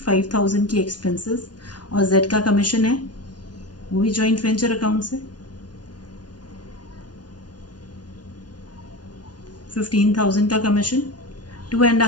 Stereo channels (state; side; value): late; right; 0.69 ms